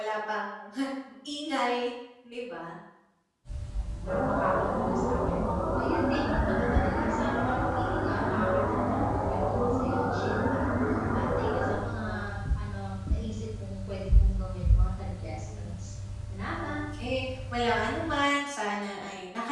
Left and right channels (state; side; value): identical; both; correlation 1.00